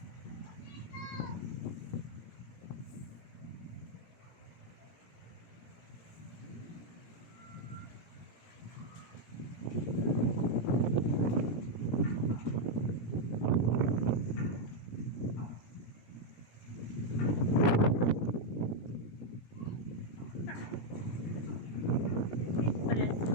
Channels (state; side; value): late; right; 17 ms